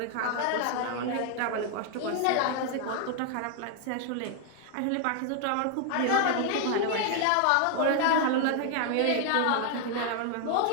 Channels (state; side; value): different; both; correlation 0.00